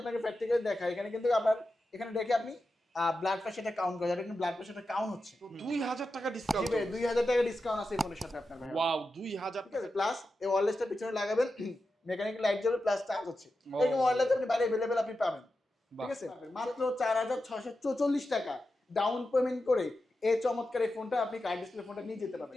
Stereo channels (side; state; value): both; normal; correlation 0.91